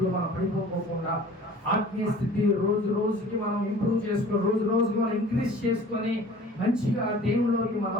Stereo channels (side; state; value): both; normal; correlation 0.46